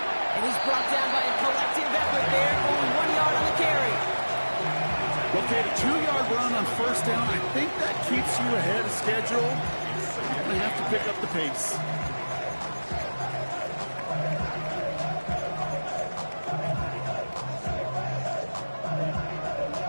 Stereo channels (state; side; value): inverted; both; correlation -1.00